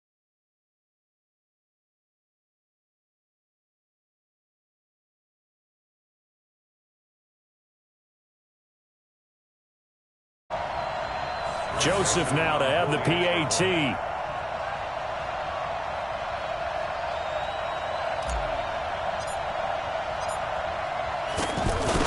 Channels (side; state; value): both; identical; correlation 1.00